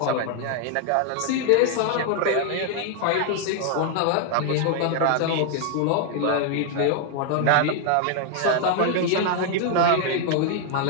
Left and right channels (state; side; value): different; both; correlation 0.00